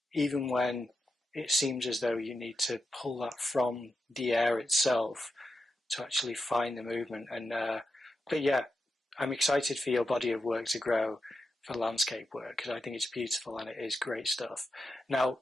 even when it seems as though you need to pull that from the air itself to actually find the movement. And but yeah, I'm excited for your body of work to grow for landscape work, because I think it's beautiful and it is great stuff.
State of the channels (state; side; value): normal; both; correlation 0.88